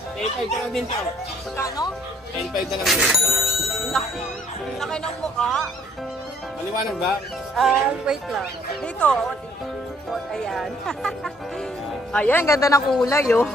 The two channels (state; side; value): normal; both; correlation 0.63